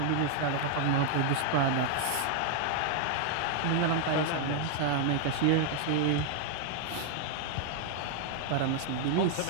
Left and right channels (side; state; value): both; different; correlation 0.00